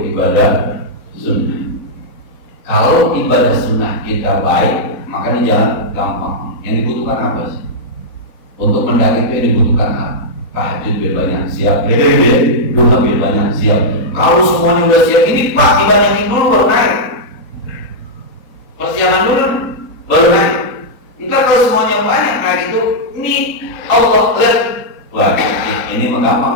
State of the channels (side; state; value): right; late; 3.8 ms